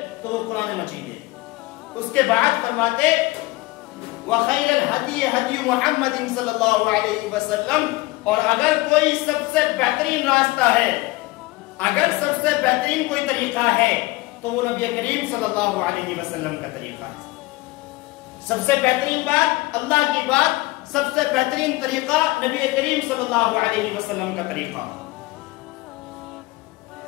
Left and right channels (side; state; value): right; quieter; 20.9 dB